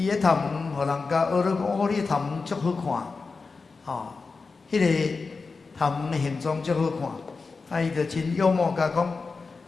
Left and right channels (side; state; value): right; quieter; 4.4 dB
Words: 咧头毛，互人家学了讲，你头毛足好看，迄个头毛的形状足好看。伊就真幽默甲讲，